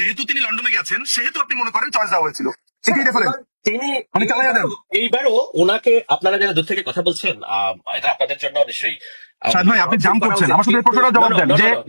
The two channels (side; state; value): both; inverted; correlation -1.00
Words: তিনি লন্ডনে গেছেন সেহেতু আপনি মনে করেন চয়েস দেওয়া হয়েছিল, এটাই রেফারেন্স। তিনি মানে চালাইয়া দেন। এইবারও ওনাকে, আপনারা যারা দূর থেকে কথা বলছেন, এটা আপনাদের জন্য নিশ্চয়ই শাহেদ ভাই আপনি জাম করছেন, আমার শুধু এই প্রশ্নটা জবাব দেন যে